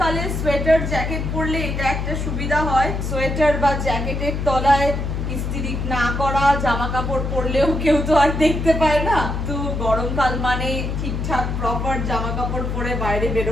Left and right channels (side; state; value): left; noise; hum, 3 dB below the sound